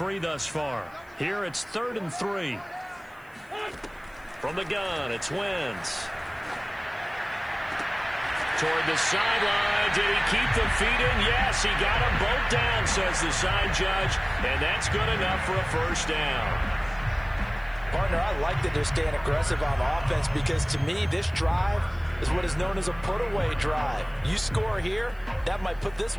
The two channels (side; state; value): left; noise; hiss, 30 dB below the sound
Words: thus far. Here it's 3rd and 3. From the gun, it's Wentz. Toward the sideline. Did he keep the feet in? Yes, he got them both down, says the side judge. And that's good enough for a 1st down. Partner, I like that they're staying aggressive on offense because, to me, this drive is what is known as a put-away drive. You score here, that might put this